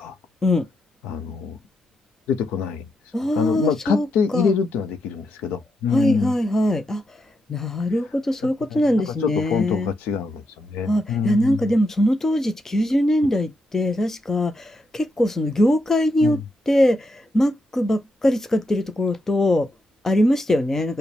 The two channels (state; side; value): normal; both; correlation 0.83